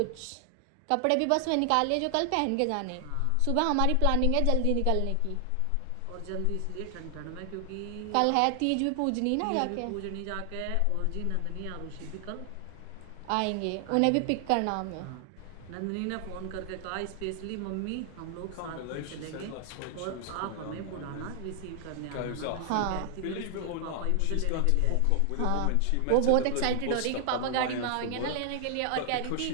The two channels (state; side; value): different; both; correlation 0.00